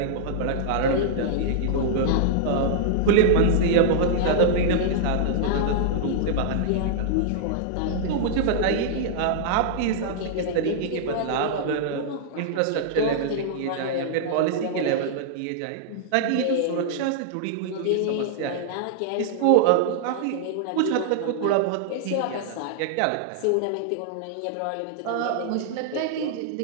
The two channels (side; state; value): both; different; correlation -0.01